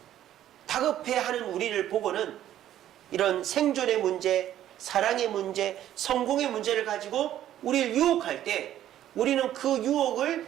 다급해하는 우리를 보고는 이런 생존의 문제, 사랑의 문제, 성공의 문제를 가지고 우리를 유혹할 때 우리는 그 유혹을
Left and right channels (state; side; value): quieter; left; 12.0 dB